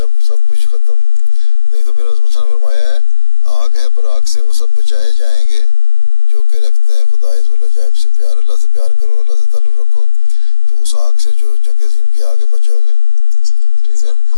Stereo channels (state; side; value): late; right; 1.8 ms